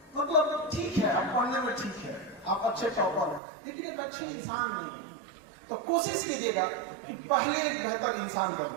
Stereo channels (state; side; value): drops out; left; at 3.4 s